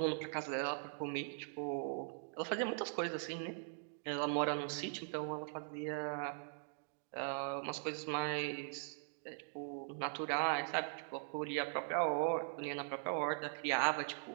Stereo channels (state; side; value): silent; left; digital silence